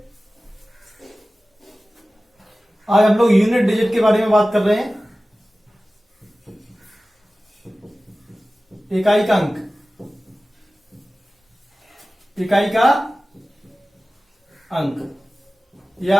आज हम लोग यूनिट डिजिट के बारे में बात कर रहे हैं। इकाई का अंक, इकाई का अंक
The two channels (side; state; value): both; normal; correlation 0.96